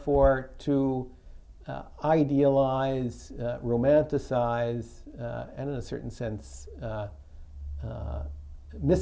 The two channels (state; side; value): identical; both; correlation 1.00